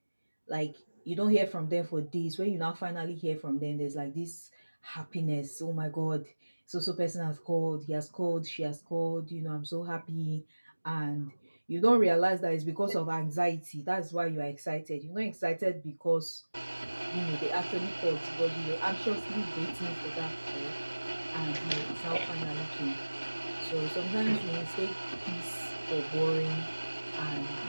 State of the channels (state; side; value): inverted; both; correlation -1.00